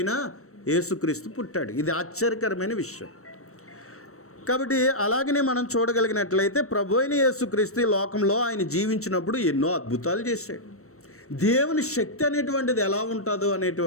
యేసుక్రీస్తు పుట్టాడు. ఇది ఆశ్చర్యకరమైన విషయం. కాబట్టి అలాగనే మనం చూడగలిగినట్లయితే ప్రభు అయిన యేసుక్రీస్తు ఈ లోకంలో ఆయన జీవించినప్పుడు ఎన్నో అద్భుతాలు చేశాడు. దేవుని శక్తి అనేటువంటిది ఎలా ఉంటుందో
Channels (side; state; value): right; late; 0.64 ms